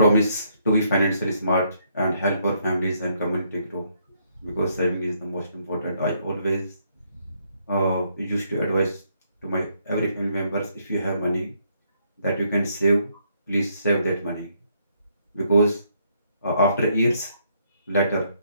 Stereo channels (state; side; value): inverted; both; correlation -0.72